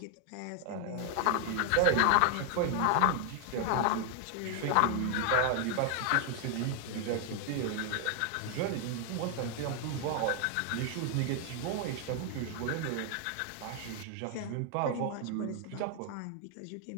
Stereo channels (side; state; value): both; different; correlation 0.00